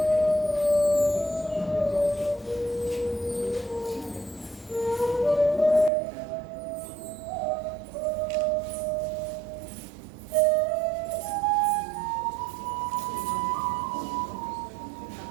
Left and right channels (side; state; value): left; drops out; at 5.9 s